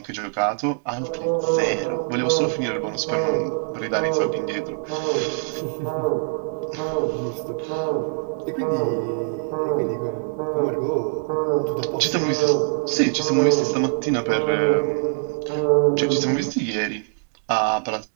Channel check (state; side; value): silent; left; digital silence